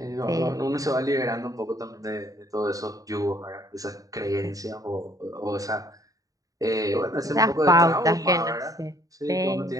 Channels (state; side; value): late; left; 0.17 ms